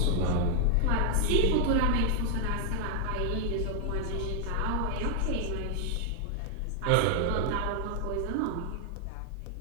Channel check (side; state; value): both; different; correlation 0.00